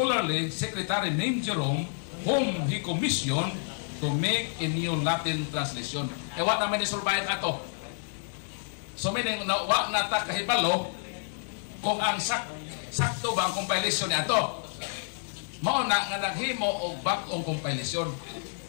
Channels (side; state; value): right; silent; 56 dB below the other